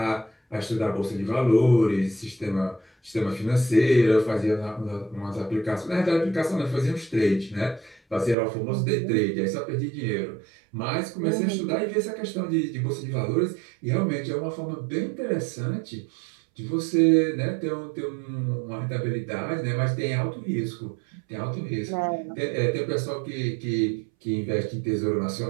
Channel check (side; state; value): left; drops out; at 8.3 s